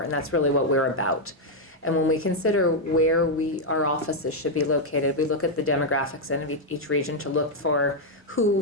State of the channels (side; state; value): both; normal; correlation -0.01